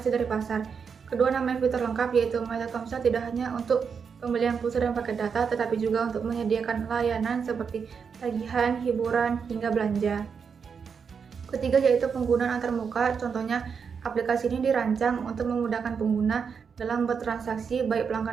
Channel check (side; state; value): left; quieter; 6.2 dB